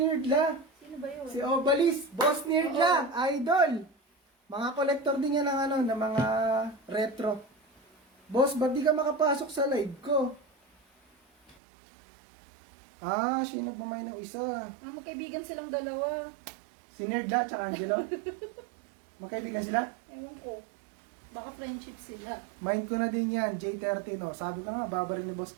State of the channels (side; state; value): left; drops out; at 11.6 s